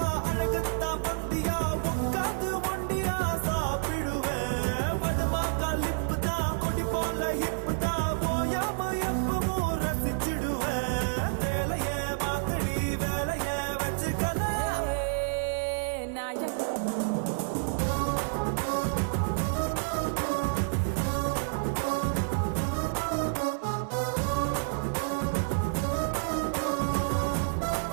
அழகத்தா பந்தியா உட்காந்து ஒண்டியா சாப்பிடுவேன் வடமாக்கா லிப்பு தான் கொடி போல ஹிப்பு தான் போயாம எப்பவும் ரசிச்சிடுவேன் வேலையே மாத்தடி வேலையே வச்சுக்கல நாயக்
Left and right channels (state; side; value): silent; left; 58 dB below the other